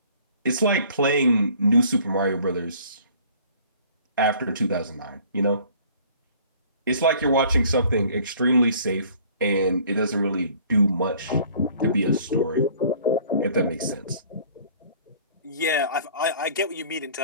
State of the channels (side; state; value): both; inverted; correlation -0.53